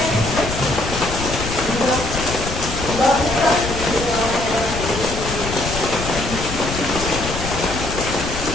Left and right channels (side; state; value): left; noise; rumble, 6 dB below the sound